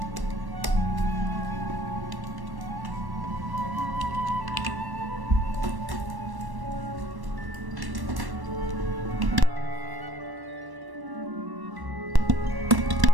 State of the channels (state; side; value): late; left; 1.1 ms